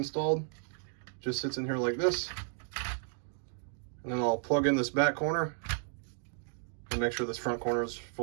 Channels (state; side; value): silent; left; 55 dB below the other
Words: Just sits in here like this. And then I'll plug in this back corner and make sure this front corner is